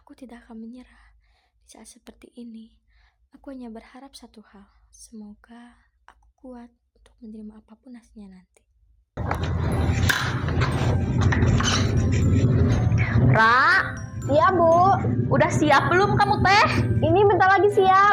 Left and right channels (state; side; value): identical; both; correlation 1.00